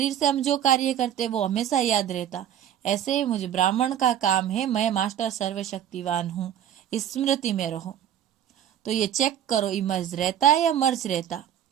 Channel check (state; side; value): quieter; left; 10.3 dB